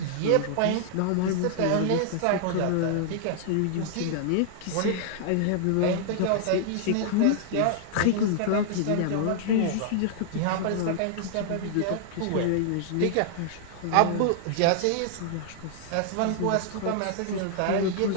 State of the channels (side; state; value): both; different; correlation -0.01